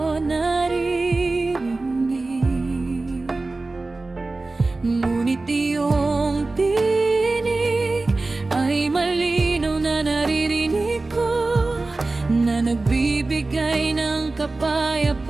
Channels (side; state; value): left; quieter; 3.3 dB